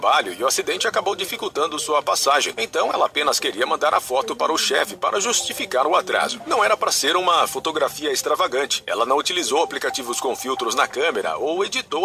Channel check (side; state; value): both; identical; correlation 1.00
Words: e o acidente acabou dificultando sua passagem. Então ela apenas queria mandar a foto para o chefe para justificar o atraso. Não era para ser uma fotografia extravagante. Ela não utilizou aplicativos com filtros na câmera ou